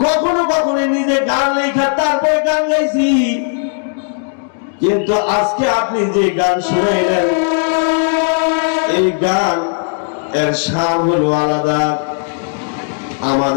কখনো কখনো নিজে গান লেখা তারপরে গান গাইছি। কিন্তু আজকে আপনি যে গান শুনাইলেন, এই গান এর শান হলো আলাদা।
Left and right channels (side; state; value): right; silent; digital silence